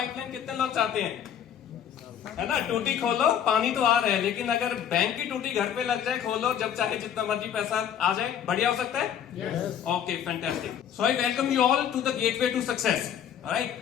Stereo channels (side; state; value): right; quieter; 9.2 dB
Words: कितने लोग चाहते हैं, है ना। टूटी खोलो पानी तो आ रहा है, लेकिन अगर बैंक की टूटी घर पे लग जाए, खोलो जब चाहे जितना मर्जी पैसा आ जाए, बढ़िया हो सकता है। Okay, fantastic. So I welcome you all to the gateway to success. Right,